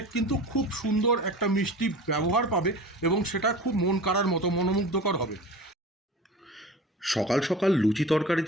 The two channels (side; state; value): both; normal; correlation 0.36